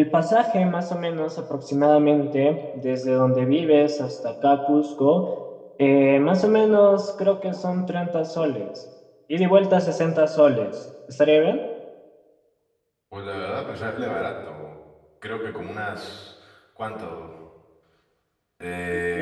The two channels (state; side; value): identical; both; correlation 1.00